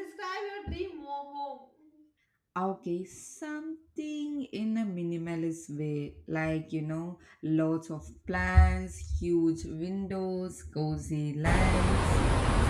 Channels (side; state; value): both; identical; correlation 1.00